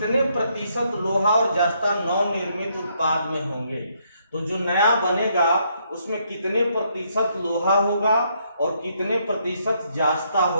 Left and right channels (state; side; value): inverted; both; correlation -0.73